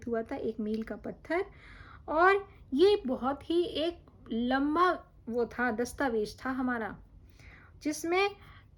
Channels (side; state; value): both; identical; correlation 1.00